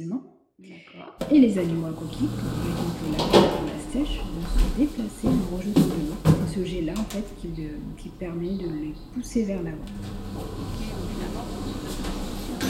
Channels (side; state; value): both; identical; correlation 1.00